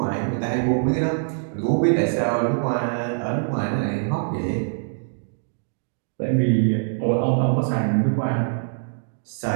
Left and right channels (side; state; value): left; silent; digital silence